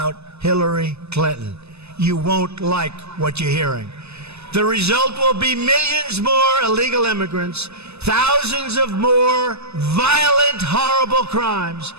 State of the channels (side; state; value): left; late; 0.80 ms